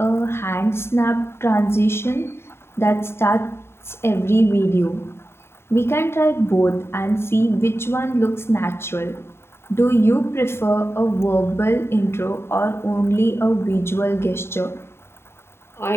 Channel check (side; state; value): right; late; 0.12 ms